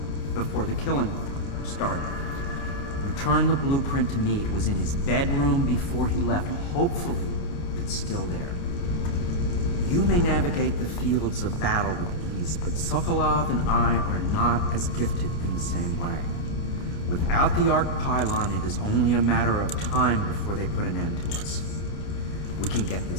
before the killing started. Return the blueprint to me. It was in his bedroom before he left. Hopefully, it's still there. You may navigate the fields of battle with ease, but Sokolov and I are not as gifted in the same way. Without the arc pylon, it is only a matter of time before they put an end to us. We can get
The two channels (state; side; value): late; right; 29 ms